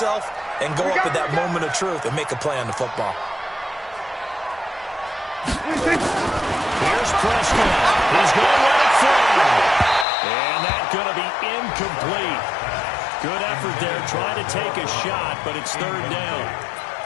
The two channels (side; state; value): right; drops out; at 10.1 s